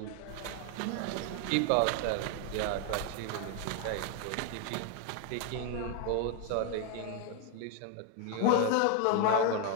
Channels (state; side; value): different; both; correlation 0.01